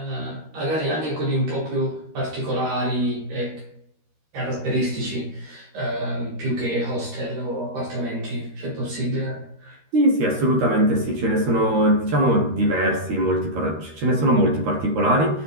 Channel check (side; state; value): left; late; 13 ms